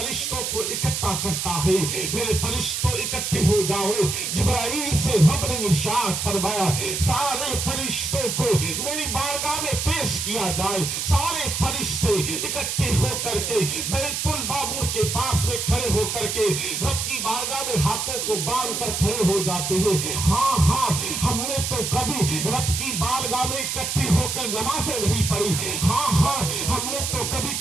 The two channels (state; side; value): noise; right; hiss, 2 dB below the sound